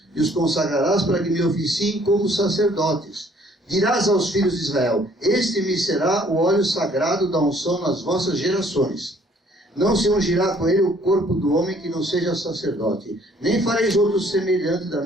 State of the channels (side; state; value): both; normal; correlation 0.60